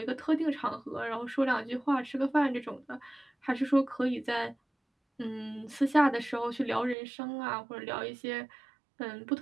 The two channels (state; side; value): drops out; left; at 7.0 s